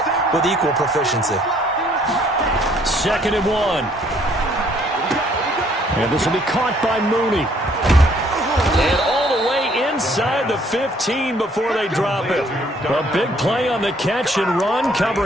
with equal proficiency. 2nd and 1. And this will be caught by Mooney. And all the way inside the 15 before they drop it. A big play on the catch and run,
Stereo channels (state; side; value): normal; both; correlation 0.63